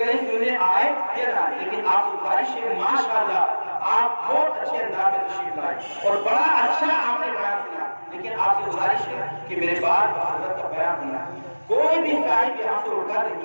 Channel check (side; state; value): both; inverted; correlation -1.00